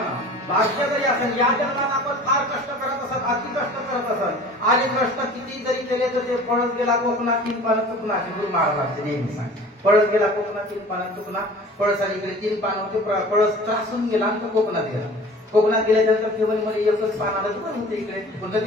भाग्य जरी असेल, या जन्मात आपण फार कष्ट करत असत, अति कष्ट करत असत, आणि कष्ट किती जरी केले तर ते पळत गेला कोकणात तीन पानं चुकणार. गुरु महाराजांचे नेहमी सांग, पळत गेला कोकणात तीन पानं चुकणार. पळसाने गेले तीन पानं होते, पळस त्रासून गेला आणि तो कोकणात गेला. कोकणात गेल्यानंतर केवळमध्ये एकच पान आलं तर होते इकडे, पण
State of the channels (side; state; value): both; normal; correlation 0.44